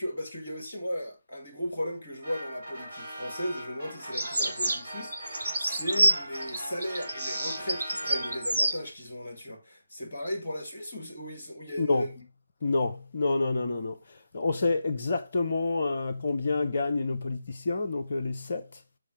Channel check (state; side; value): inverted; both; correlation -0.90